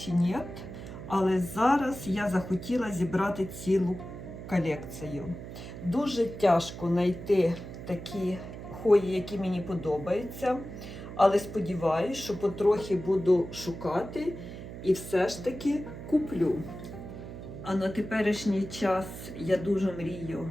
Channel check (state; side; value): noise; right; hum, 11 dB below the sound